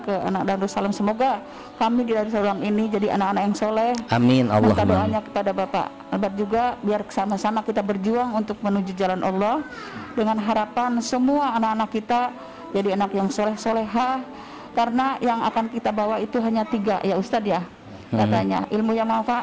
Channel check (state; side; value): identical; both; correlation 1.00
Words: ke anak Darussalam, semoga kami di Darussalam ini jadi anak-anak yang soleh. Amin. Minta doanya kepada Bapak Albert juga, biar sama-sama kita berjuang untuk menuju jalan Allah, dengan harapan semua anak-anak kita jadi anak yang soleh-solehah. Karena yang akan kita bawa itu hanya 3 ya Ustadz ya, katanya ilmu yang